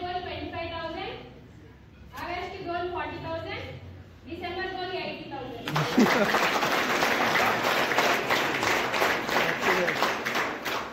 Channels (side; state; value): both; identical; correlation 1.00